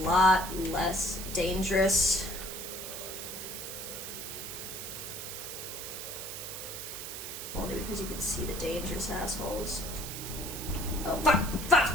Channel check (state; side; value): noise; right; hiss, 7 dB below the sound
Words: less dangerous. Only because you can see the dangerous assholes. Oh, fuck! Fuck!